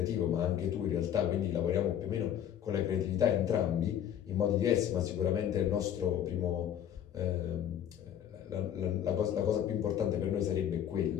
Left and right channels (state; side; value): quieter; right; 10.0 dB